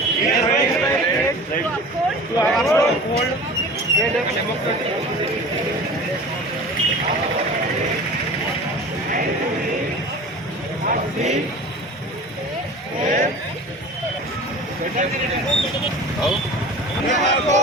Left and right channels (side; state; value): both; normal; correlation 0.38